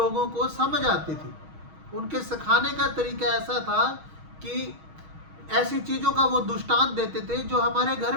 को समझ आती थी। उनके सिखाने का तरीका ऐसा था कि ऐसी चीज़ों का वो दृष्टांत देते थे जो हमारे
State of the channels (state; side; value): late; left; 6.3 ms